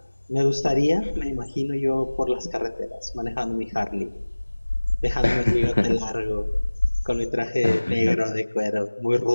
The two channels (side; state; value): both; inverted; correlation -1.00